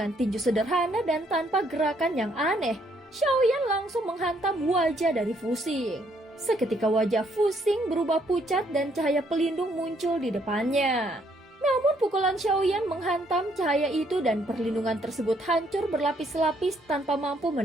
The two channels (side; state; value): both; normal; correlation 0.69